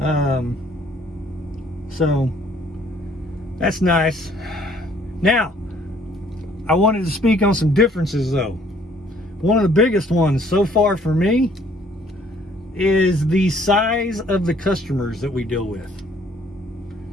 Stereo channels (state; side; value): normal; both; correlation 0.61